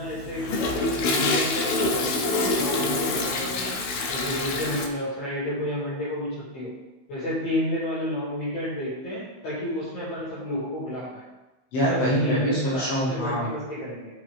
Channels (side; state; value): right; late; 15 ms